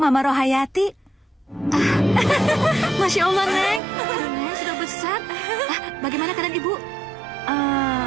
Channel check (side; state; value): left; drops out; at 3.8 s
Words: Rohayati. Masya Allah, Neng. Neng sudah besar. Bagaimana keadaan Ibu?